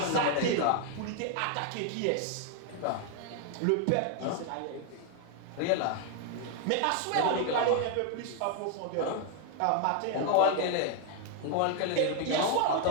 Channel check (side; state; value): both; different; correlation 0.00